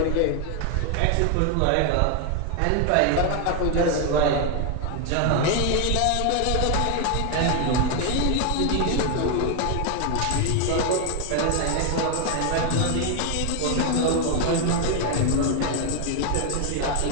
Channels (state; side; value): different; both; correlation 0.01